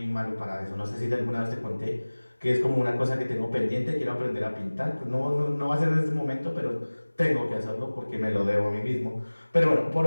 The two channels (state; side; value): inverted; both; correlation -1.00